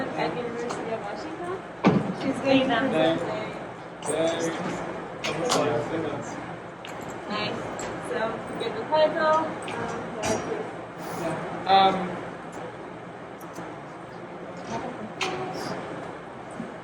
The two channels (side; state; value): both; identical; correlation 1.00